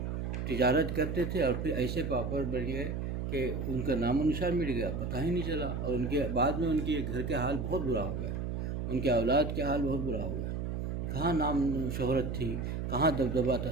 تجارت کرتے تھے اور پھر ایسے پاپڑ بن گئے کہ ان کا نام و نشان مٹ گیا، پتہ ہی نہیں چلا، اور ان کے بعد میں ان کے گھر کے حال بہت برا ہو گیا، ان کے اولاد کے حال بہت برا ہو گیا۔ کہاں نام شہرت تھی، کہاں دبدبہ تھا،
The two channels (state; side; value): noise; right; hum, 3 dB below the sound